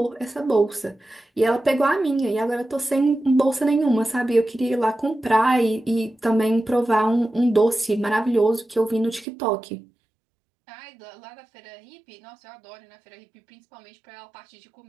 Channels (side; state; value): left; drops out; at 9.2 s